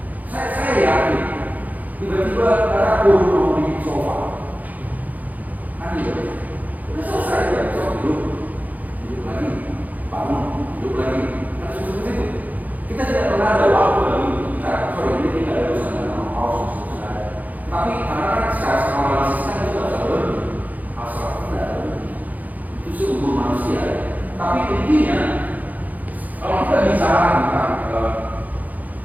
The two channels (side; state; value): left; late; 0.080 ms